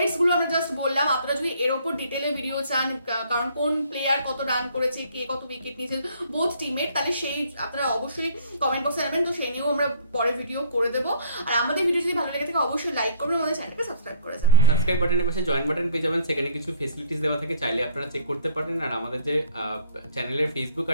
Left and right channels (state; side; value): inverted; both; correlation -0.56